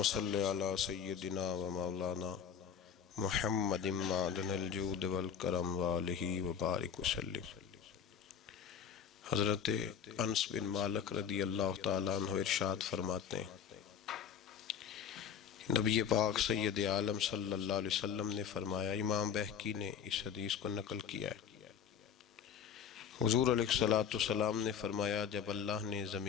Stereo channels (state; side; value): quieter; right; 7.7 dB